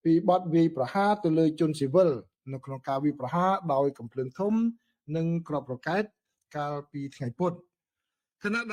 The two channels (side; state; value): both; identical; correlation 1.00